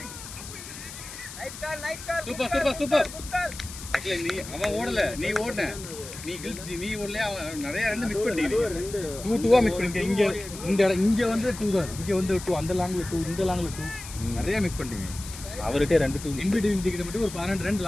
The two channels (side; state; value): left; noise; hiss, 12 dB below the sound